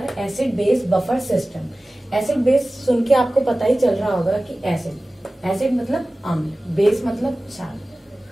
acid base buffer system. Acid base सुन के आपको पता ही चल रहा होगा कि एसिड मतलब अम्ल, बेस मतलब क्षार।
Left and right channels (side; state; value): both; normal; correlation 0.97